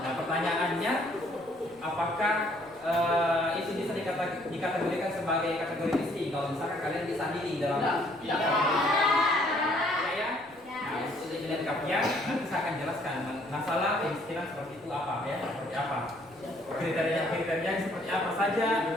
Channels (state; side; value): noise; left; rumble, 30 dB below the sound